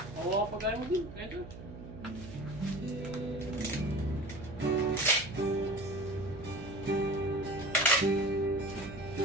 Oo, pagkain mo din. Kaya ito.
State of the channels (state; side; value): noise; right; hum, 13 dB below the sound